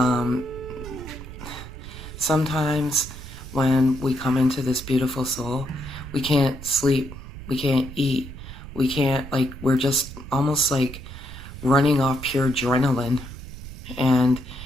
Sometimes when we come into this beautiful soul, we can't sleep, we can't eat, we can't, we're just almost like running off pure adrenaline. And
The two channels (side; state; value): right; noise; rumble, 12 dB below the sound